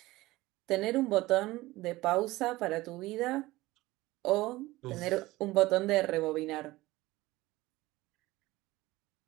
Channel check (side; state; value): left; quieter; 18.7 dB